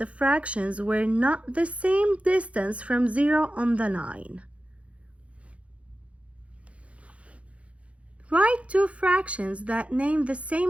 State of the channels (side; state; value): left; late; 0.063 ms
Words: fractions were not the same distance from 0 on the line. Write 2 fractions that name the